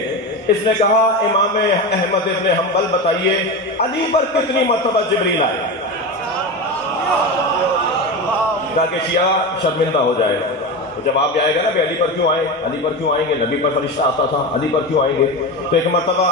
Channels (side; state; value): both; normal; correlation 0.22